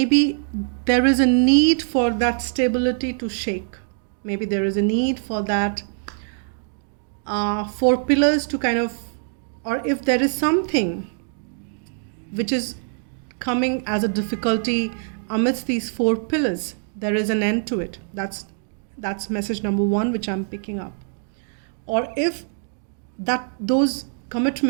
there is a need for that stability to shake. Maybe there is a need for that four pillars to kind of, or if there is something which is coming as a difficulty amidst these four pillars, there is an end to it. That's message number one, which I'm picking up. Or if those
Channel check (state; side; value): silent; left; 63 dB below the other